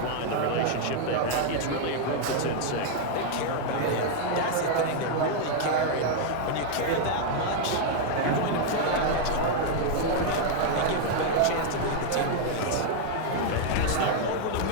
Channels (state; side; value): different; both; correlation 0.00